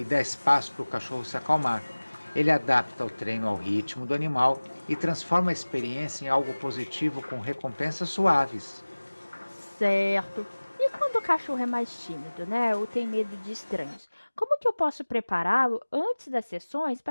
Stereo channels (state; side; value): inverted; both; correlation -1.00